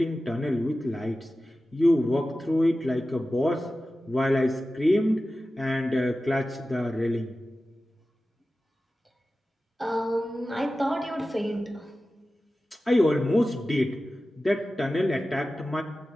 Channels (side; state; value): both; normal; correlation 0.95